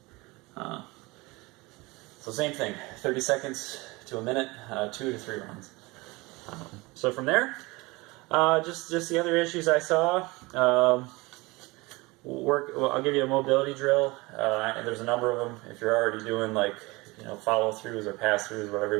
So same thing, 30 seconds to a minute, 2 to 3 rounds. So from there, just the other issues I saw. I'll give you a mobility drill, and there's a number of them. If you're already doing like follow-throughs or pass-throughs, whatever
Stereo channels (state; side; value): quieter; left; 23.5 dB